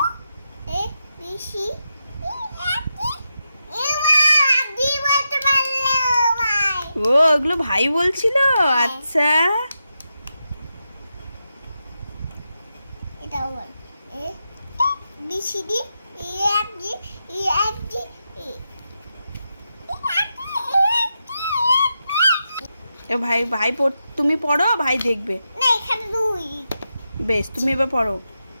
এ বি সি ও ওগুলো ভাই বলছিল, আচ্ছা। এটাও বল A B C D E F G E F G এ ভাই ভাই তুমি পড়ো, ভাই দেখবে। না এখানে দুই বেশ, তুমি এবার পড়ো।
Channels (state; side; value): inverted; both; correlation -0.87